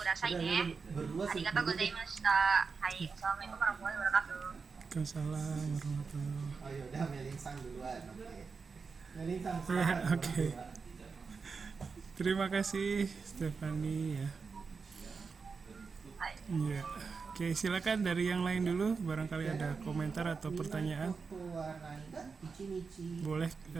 ださいね。ありがとうございました。はい、Assalamualaikum warahmatullahi wabarakatuh. Waalaikumsalam warahmatullahi. Oh yaudah, Melinsang duluan. Oke. Melinsang. Oke. Terima kasih Stefani ya. Iya. Oke, silakan dari yang lain dulu, barangkali ada komentar atau pertanyaan. Boleh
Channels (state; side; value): quieter; left; 5.0 dB